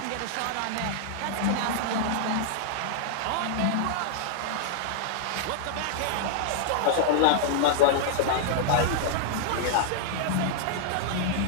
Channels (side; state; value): both; different; correlation -0.01